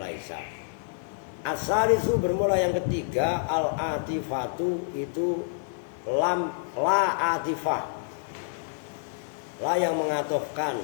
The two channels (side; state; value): right; silent; digital silence